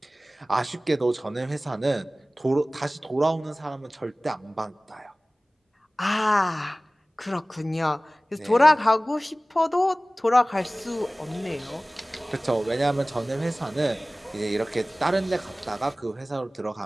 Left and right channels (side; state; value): both; normal; correlation 0.98